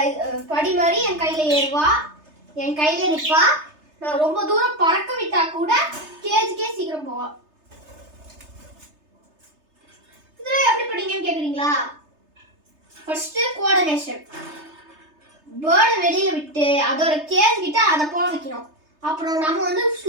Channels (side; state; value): left; late; 3.3 ms